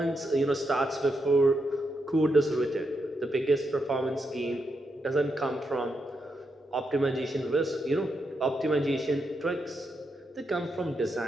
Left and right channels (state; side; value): normal; both; correlation 0.83